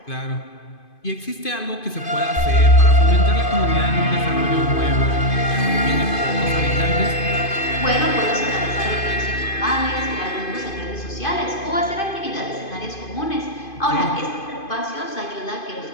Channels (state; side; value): late; right; 2.5 ms